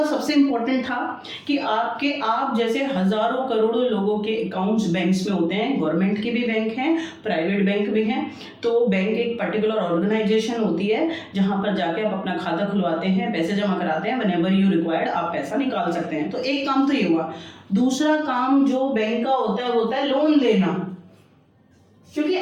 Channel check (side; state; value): both; identical; correlation 1.00